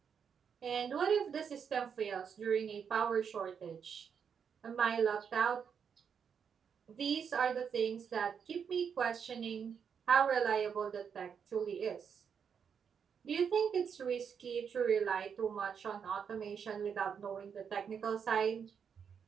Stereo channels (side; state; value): left; quieter; 7.1 dB